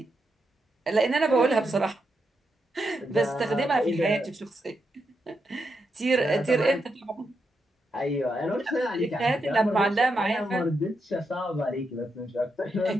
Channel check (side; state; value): both; normal; correlation 0.84